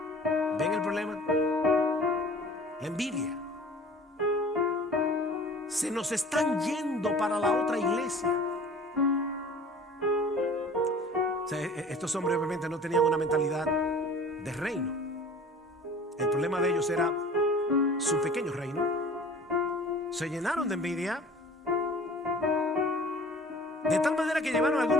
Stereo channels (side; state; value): both; normal; correlation 0.46